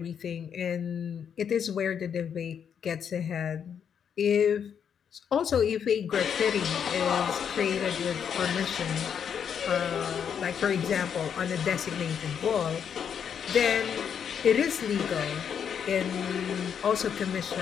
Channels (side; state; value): right; quieter; 7.8 dB